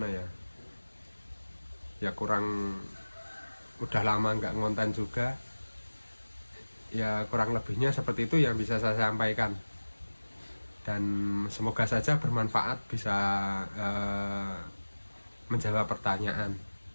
ya kurang, udah lama nggak ngonten juga ya, kurang lebihnya seperti itu yang bisa saya sampaikan, dan semoga saja bermanfaat, bisa menjawab pertanyaan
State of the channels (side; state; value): both; inverted; correlation -1.00